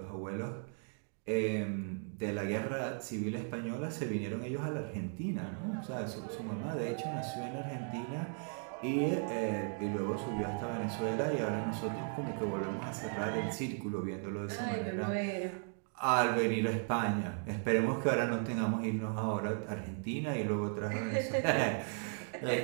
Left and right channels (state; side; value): silent; left; 54 dB below the other